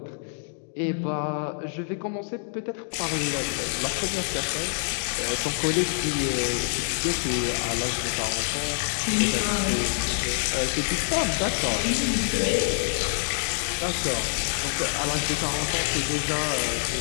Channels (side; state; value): right; silent; digital silence